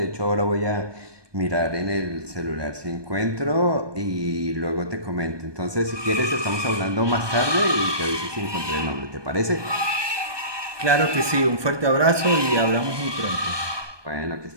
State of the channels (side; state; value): left; late; 1.2 ms